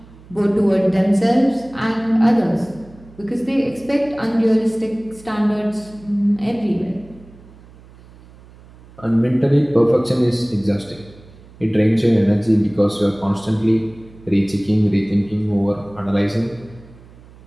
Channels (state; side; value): noise; right; hum, 23 dB below the sound